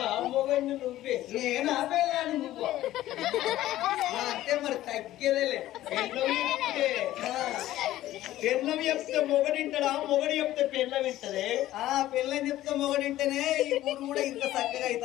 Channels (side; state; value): right; quieter; 14.6 dB